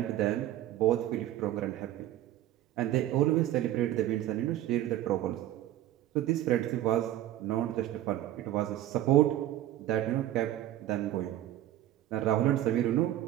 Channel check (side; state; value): left; quieter; 13.4 dB